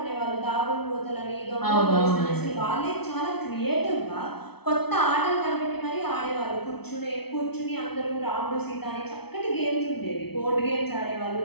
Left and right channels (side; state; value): right; late; 0.97 ms